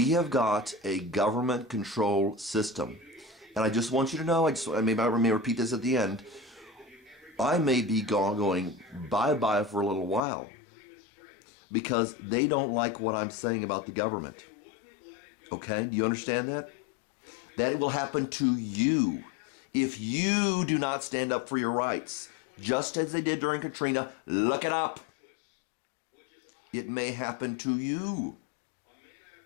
have got a government-controlled system. And I just want you to know, I may repeat this at the end, I may be going bye-bye for a little while because they don't like what I'm saying about the government. Okay? Do you understand that? That it will happen to you if you do not stand up for your rights, just as they did during Katrina. Look it up. It may happen to you.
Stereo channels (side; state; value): right; drops out; at 10.2 s